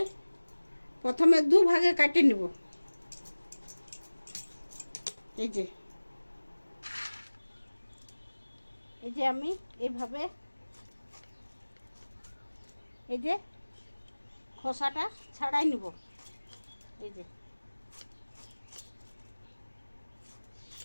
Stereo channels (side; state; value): both; inverted; correlation -1.00